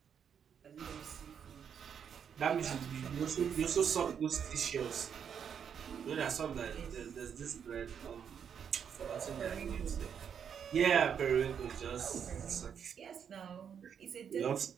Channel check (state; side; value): quieter; left; 7.7 dB